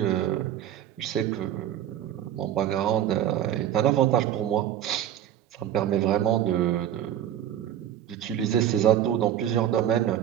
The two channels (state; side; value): quieter; left; 11.0 dB